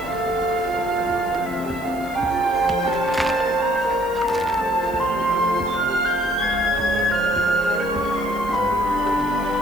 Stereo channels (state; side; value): noise; left; hiss, 20 dB below the sound